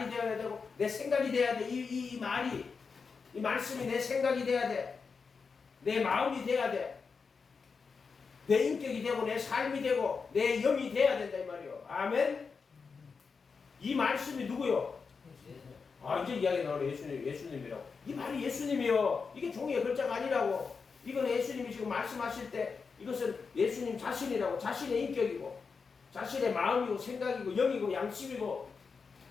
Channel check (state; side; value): quieter; right; 5.2 dB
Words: 되어야 되고 내 생각이 돼야 돼. 이 말이 이 말씀이 내 생각이 돼야 돼. 내 마음이 돼야 돼. 내 인격이 되고 내 삶이 되고 내 영이 돼야 된다 이 말이요. 아멘. 이 말씀이 누구요? 이제 이야기 나오네. 예수님이라고. 이 말이 예수님이요. 이게 종이의 글자가 아니라고. 이건 예수님이 지금 말씀하실 때 이것은 예수님 자신이라고. 자신의 인격이고 자신의 마음이고 생각이고 영이고 양심이고